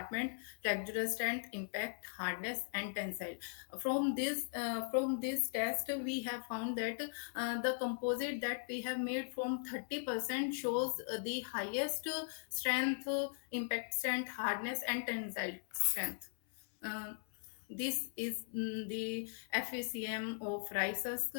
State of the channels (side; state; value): right; silent; 52 dB below the other